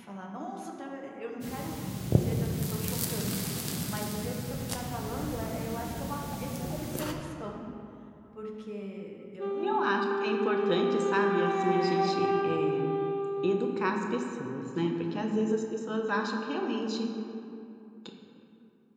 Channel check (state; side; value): identical; both; correlation 1.00